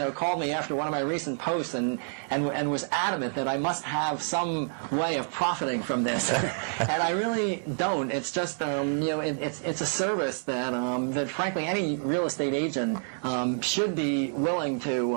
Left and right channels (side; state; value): left; silent; 59 dB below the other